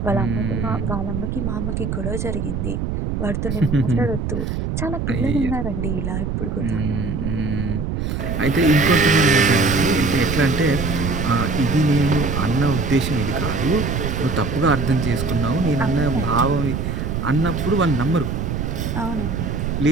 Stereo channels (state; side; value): noise; right; rumble, 2 dB below the sound